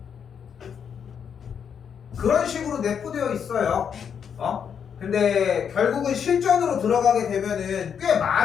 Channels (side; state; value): right; quieter; 7.5 dB